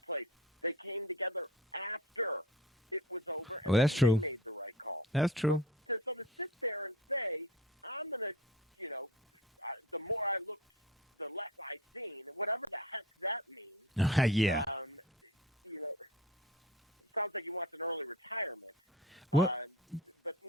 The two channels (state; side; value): normal; both; correlation 0.35